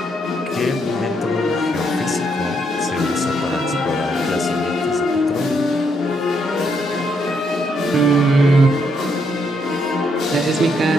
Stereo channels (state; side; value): normal; both; correlation 0.75